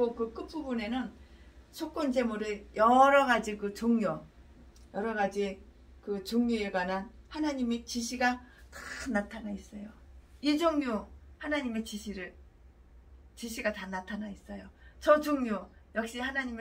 그 끝부분에는 속건제물의 여러 가지 그 종류, 여러 가지 그 종류에 관한 하나님의 지시가 다 나타나 있어요. 이 종류 하나님의 지시가 다 나타나 있어요. 저 종류 역시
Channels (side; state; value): both; identical; correlation 1.00